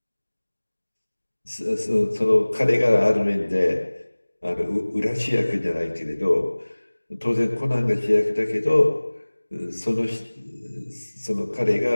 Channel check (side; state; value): both; inverted; correlation -1.00